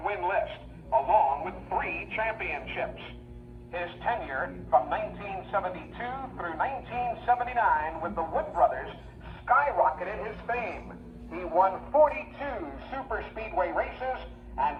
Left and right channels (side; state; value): both; identical; correlation 1.00